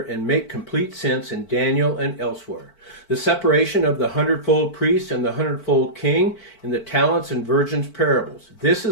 and make complete sense in Daniel and elsewhere. The separation of the 100-fold priest and the 100-fold king in the talents and virgins parables. This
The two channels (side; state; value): right; late; 4.5 ms